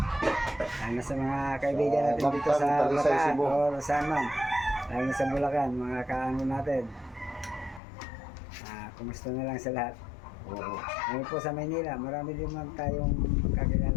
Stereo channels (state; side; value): drops out; right; at 7.8 s